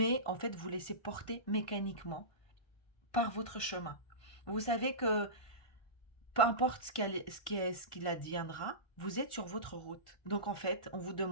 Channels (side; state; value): right; late; 1.4 ms